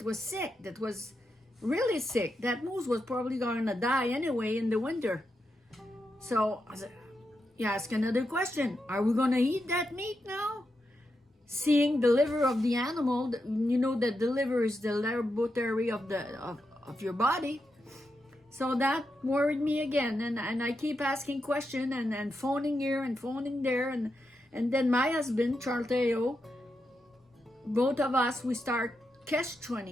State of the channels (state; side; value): normal; both; correlation 0.86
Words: was sick. That was really sick. That moose was probably gonna die anyway in the winter. So you ask another question. Are we gonna eat that meat now? Seeing the liver of the animal, you know that the liver is the laboratory of your body. So that worried me again, and I keep asking questions and phoning here and phoning there, and then my husband, Charles, both of us, we start